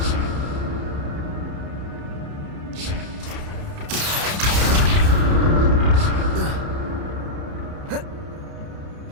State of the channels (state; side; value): late; left; 31 ms